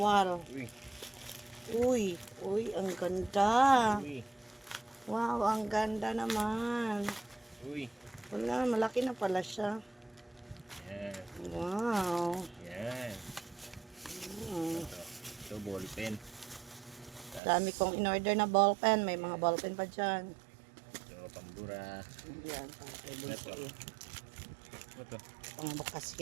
Uy. Uy, ang ganda. Uy. Wow, ang ganda naman. Uy. Wala, malaki na pala siya. Yan. Wow. Yan. Hmm. Ito ball pen. Dami kong in-order na ballpen. May mga ballpen pa dyan. Ito pambura. Yan, para kay Bunso. Ito. Pangbukas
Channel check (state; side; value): drops out; left; at 17.4 s